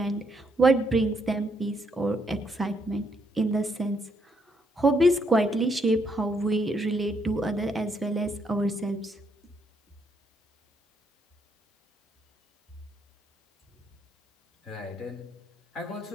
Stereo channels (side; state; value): both; normal; correlation 0.74